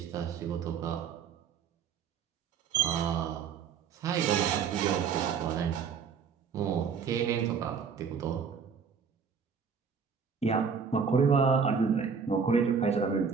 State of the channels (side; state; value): left; quieter; 6.3 dB